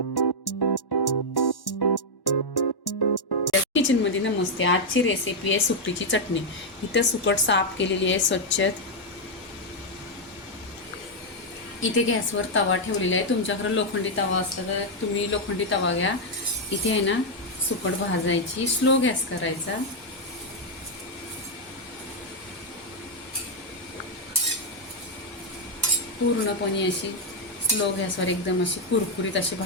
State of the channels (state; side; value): late; right; 1.1 ms